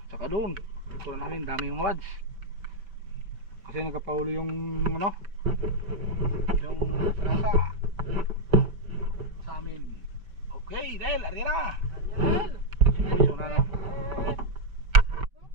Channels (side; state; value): left; late; 5.3 ms